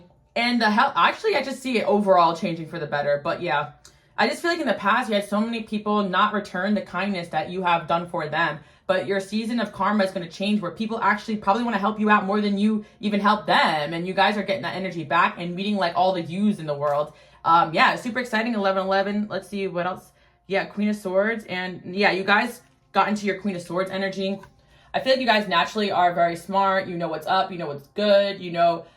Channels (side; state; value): both; identical; correlation 1.00